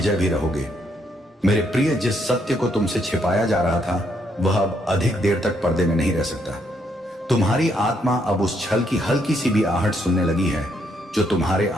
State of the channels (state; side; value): normal; both; correlation 0.73